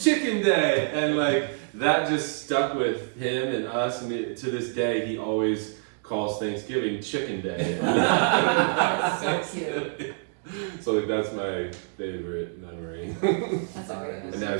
chicken day." And like, that just stuck with him and us, and to this day, he always calls Thanksgiving chicken day. That's so cute. So like, that's my favorite memory. That's a great. And now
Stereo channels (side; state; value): left; silent; 60 dB below the other